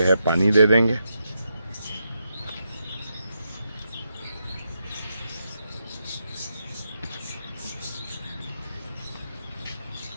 है पानी दे देंगे।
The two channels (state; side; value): inverted; both; correlation -0.84